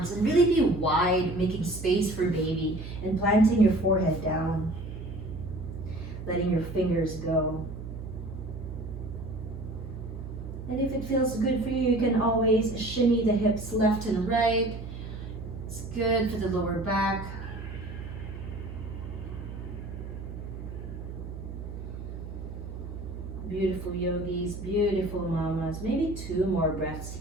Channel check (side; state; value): right; noise; hum, 9 dB below the sound